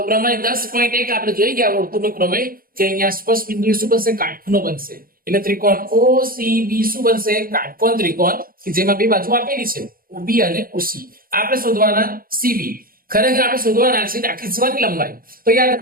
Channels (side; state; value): left; late; 0.42 ms